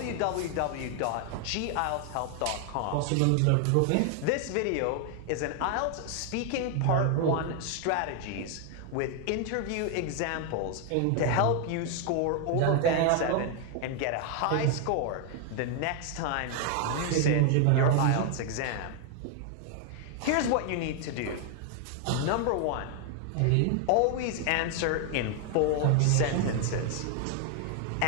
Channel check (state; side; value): different; both; correlation 0.00